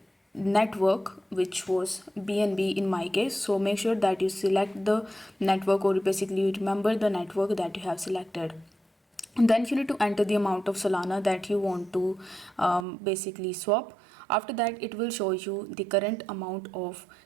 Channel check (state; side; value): drops out; left; at 12.9 s